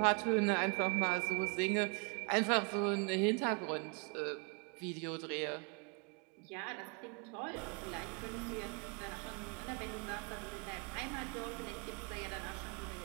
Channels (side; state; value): left; quieter; 34.4 dB